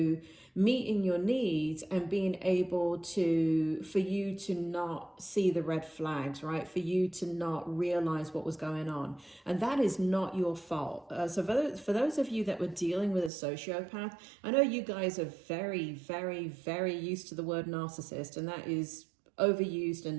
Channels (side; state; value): left; drops out; at 13.3 s